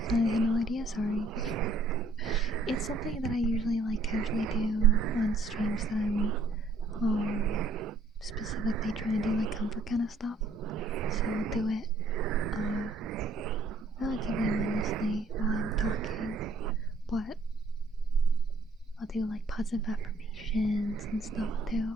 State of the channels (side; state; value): left; quieter; 3.1 dB